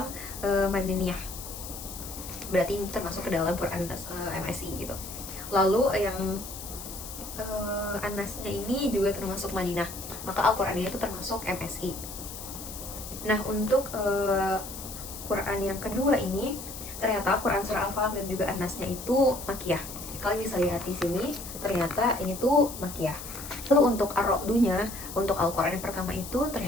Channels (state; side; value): noise; left; hiss, 11 dB below the sound